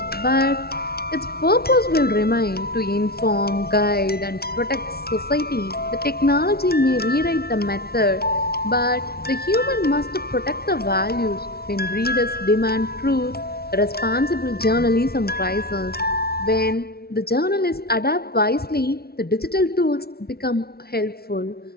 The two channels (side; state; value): right; late; 0.45 ms